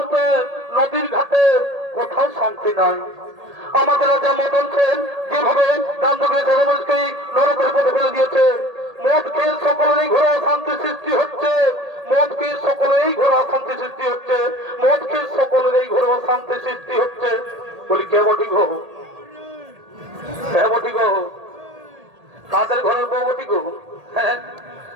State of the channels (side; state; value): left; late; 1.8 ms